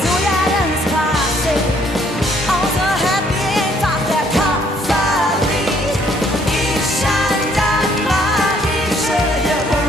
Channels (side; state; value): both; normal; correlation 0.64